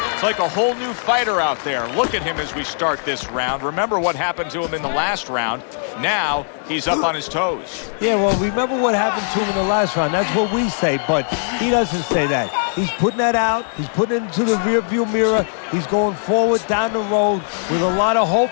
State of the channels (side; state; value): right; silent; digital silence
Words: It's like a whole new fighter out there. Look at him as we start this round. Remember what happened to him in the last round. Now he's up on his toes. Yeah, well, remember what happened to him in the last round. That's what we say, but he doesn't say that. He's putting that out. He's putting it into the rearview mirror. He's going forward down the road with a lot of hope,